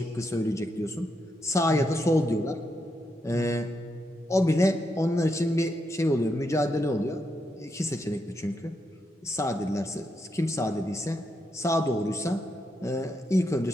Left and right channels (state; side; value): normal; both; correlation 0.82